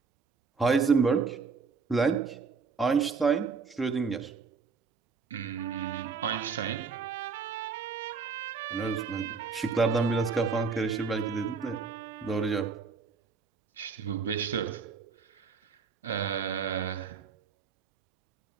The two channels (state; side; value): quieter; left; 5.1 dB